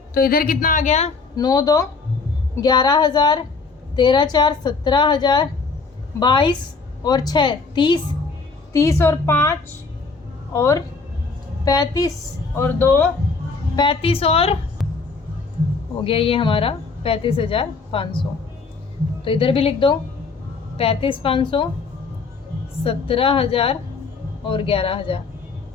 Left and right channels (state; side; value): quieter; right; 4.4 dB